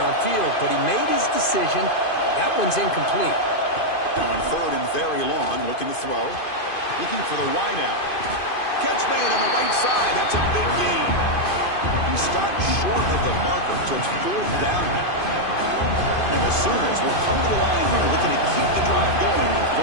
But he made his decision. That one's incomplete. Now on 3rd and very long, looking to throw. Looking for the wide out. Catch made on the right side. That's a big gain. He stopped short of the marker, so it's 4th down now. And the Sooners will come to the line here, looking to keep the drive going on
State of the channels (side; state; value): right; late; 2.5 ms